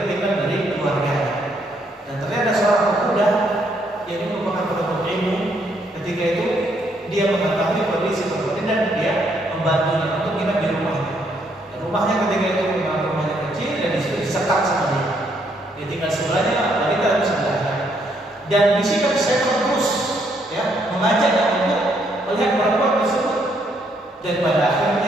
dari keluarganya, dan ternyata seorang pemuda yang merupakan penuntut ilmu. Ketika itu dia mengetahui kondisi seperti ini dan dia membantunya untuk menginap di rumahnya. Dan rumahnya ketika itu memang rumahnya kecil dan disitu disekat sama dia. Dia tinggal sebelahnya, wanita di sebelahnya. Dan bisikan setan terus mengajaknya untuk melihat perempuan tersebut. Dan pada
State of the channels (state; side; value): normal; both; correlation 0.72